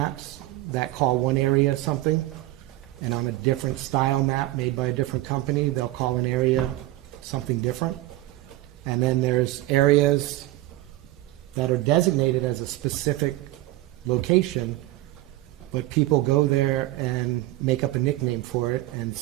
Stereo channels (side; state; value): left; quieter; 17.0 dB